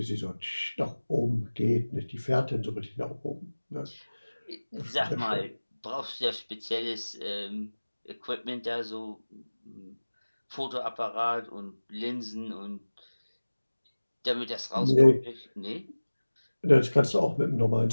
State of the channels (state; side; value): inverted; both; correlation -1.00